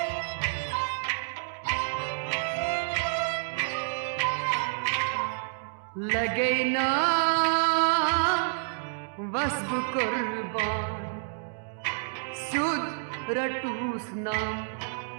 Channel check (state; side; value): silent; left; digital silence